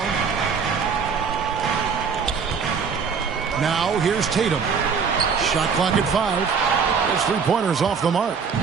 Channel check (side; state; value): left; quieter; 6.0 dB